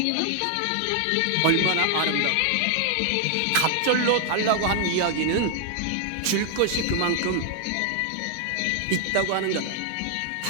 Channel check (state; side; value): different; both; correlation 0.00